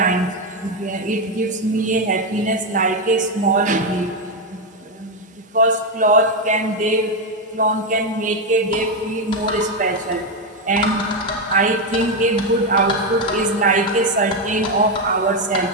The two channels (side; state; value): both; normal; correlation 0.06